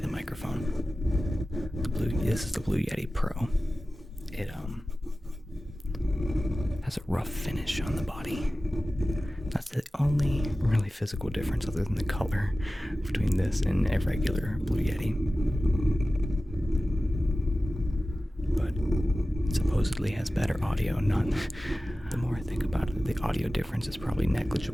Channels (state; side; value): normal; both; correlation 0.96